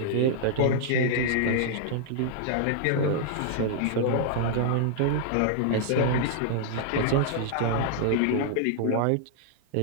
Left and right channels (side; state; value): both; different; correlation -0.01